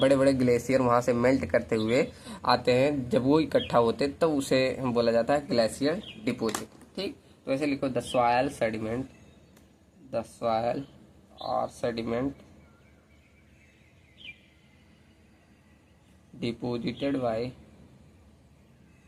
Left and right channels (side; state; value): both; identical; correlation 1.00